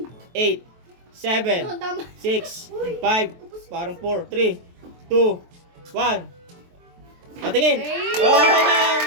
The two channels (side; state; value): left; late; 23 ms